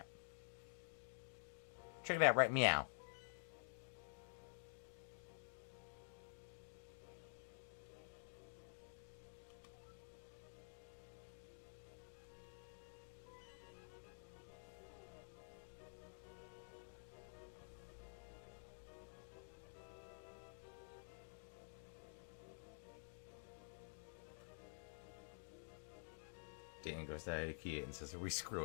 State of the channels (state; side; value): silent; right; digital silence